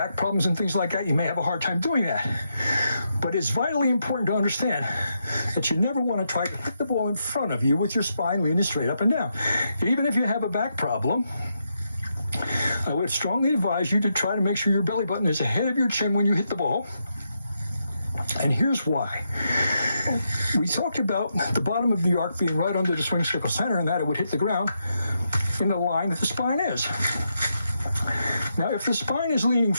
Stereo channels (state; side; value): inverted; both; correlation -0.82